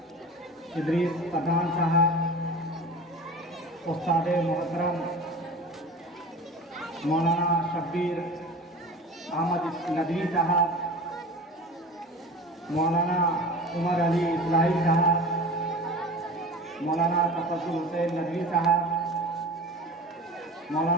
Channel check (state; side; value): normal; both; correlation 0.36